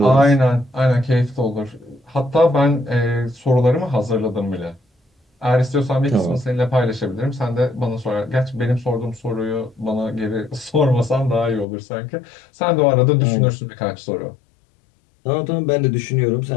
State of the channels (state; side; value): drops out; right; at 11.7 s